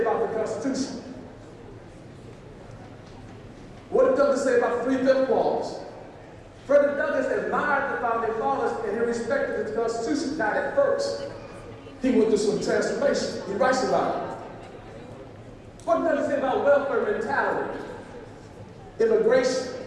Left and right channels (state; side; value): identical; both; correlation 1.00